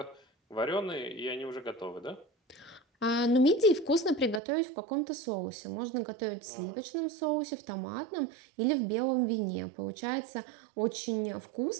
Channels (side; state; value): left; drops out; at 4.4 s